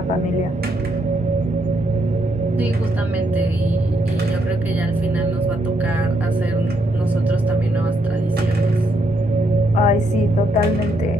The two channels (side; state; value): both; normal; correlation 0.75